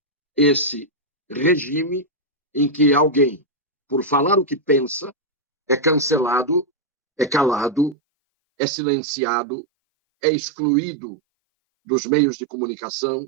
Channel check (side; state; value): left; drops out; at 8.0 s